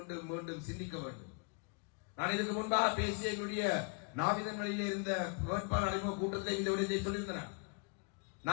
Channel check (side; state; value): right; quieter; 35.5 dB